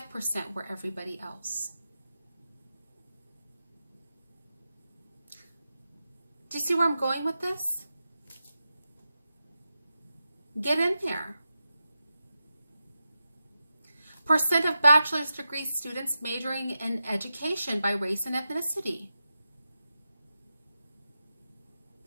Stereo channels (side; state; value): both; inverted; correlation -0.90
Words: were everybody else." Do you see where I'm going with this? Get in there. Percent of bachelor's degree students majoring in education by race and ethnicity.